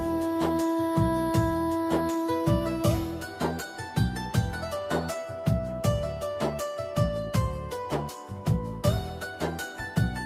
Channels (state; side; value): identical; both; correlation 1.00